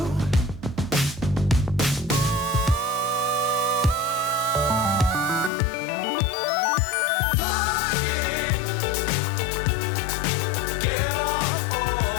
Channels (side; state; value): right; drops out; at 5.5 s